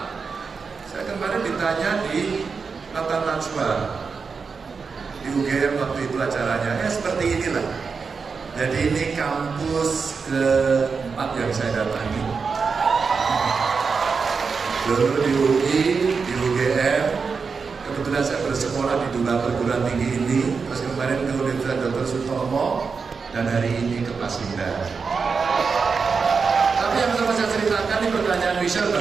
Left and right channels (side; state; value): left; quieter; 5.2 dB